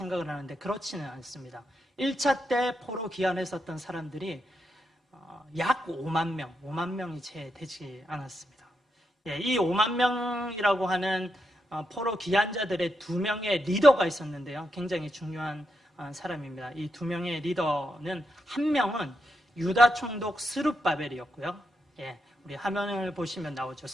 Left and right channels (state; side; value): normal; both; correlation 0.83